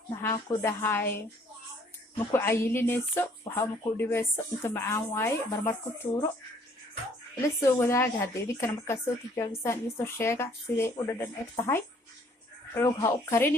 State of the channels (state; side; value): normal; both; correlation 0.61